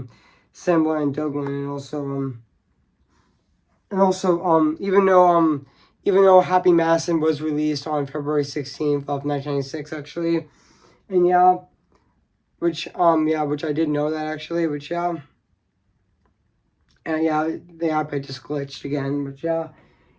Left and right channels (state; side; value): identical; both; correlation 1.00